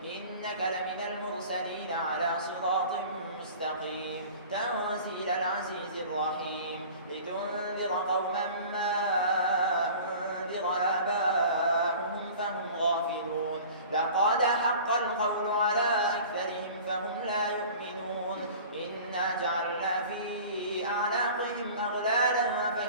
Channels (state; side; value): inverted; both; correlation -0.43